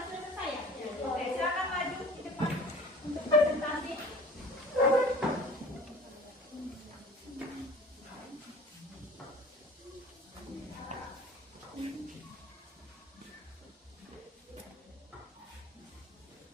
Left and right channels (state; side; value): normal; both; correlation 0.44